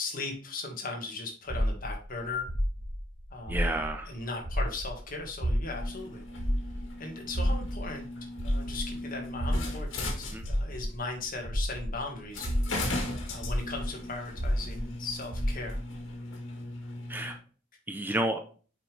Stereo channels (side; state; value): both; normal; correlation 0.73